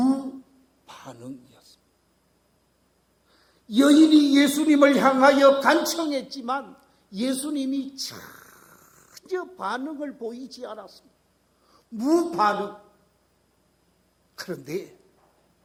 여인이 예수님을 향하여 간청했지만 예수님이 전혀 반응을 보이지 않았습니다. 무반응. 그런데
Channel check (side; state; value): both; identical; correlation 1.00